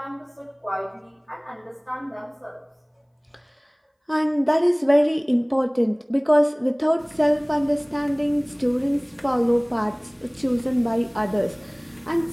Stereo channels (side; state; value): both; identical; correlation 1.00